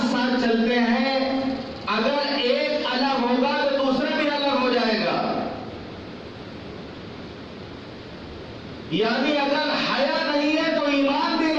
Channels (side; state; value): both; identical; correlation 1.00